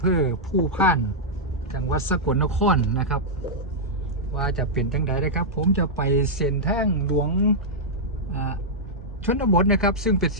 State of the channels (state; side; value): normal; both; correlation -0.08